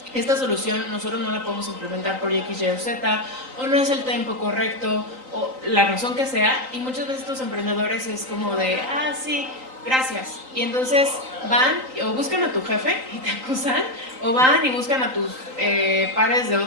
esta solución nosotros no la podemos implementar por X, Y o Z, o no es el tiempo correcto, o la razón que sea, y muchas veces estos emprendedores es como de, ah, sí, gracias. Y entonces van o buscan a tu jefe y te acusan, o van y buscan a tus pares de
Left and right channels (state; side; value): late; left; 3.9 ms